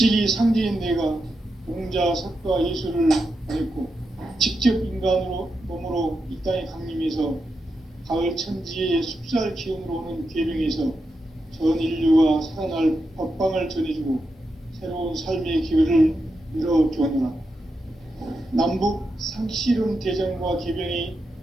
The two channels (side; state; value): both; normal; correlation 0.87